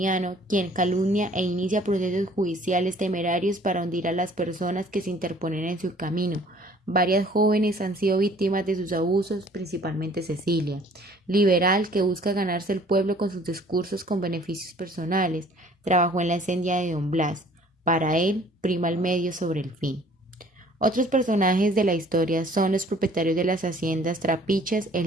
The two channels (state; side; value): normal; both; correlation 0.54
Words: quien calumnia e inicia procesos judiciales temerarios para hundir a las personas que se interponen en su camino. Varias jóvenes han sido víctimas de sus abusos, principalmente Cecilia, liberal que busca ganarse el pueblo con sus discursos con beneficios personales. Trabajó en la incendia de Don Blas. Para él, prima el medio sobre el fin. Otros personajes de la historia son los propietarios de las haciendas Trapiches,